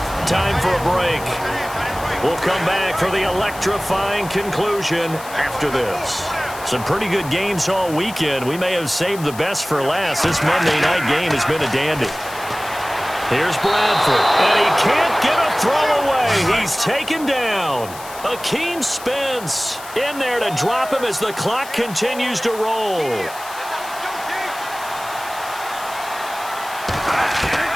Time for a break. We'll come back for the electrifying conclusion after this. Some pretty good games all weekend. We may have saved the best for last. This Monday night game has been a dandy. Here's Bradford, and he can't get a throw away. He's taken down. Akeem Spence in there to drop him as the clock continues to roll.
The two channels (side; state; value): left; noise; hiss, 15 dB below the sound